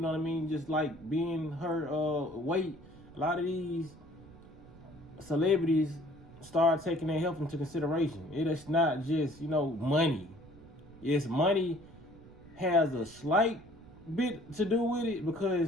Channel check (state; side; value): noise; right; rumble, 21 dB below the sound